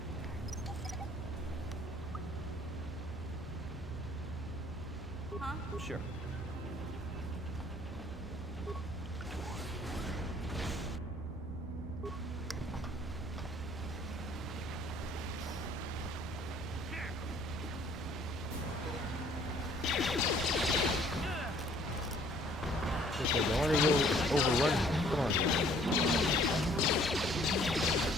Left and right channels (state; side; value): normal; both; correlation 0.58